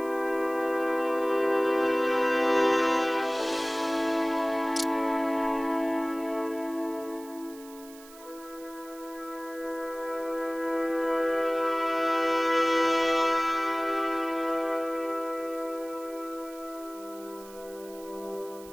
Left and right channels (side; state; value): right; noise; hiss, 20 dB below the sound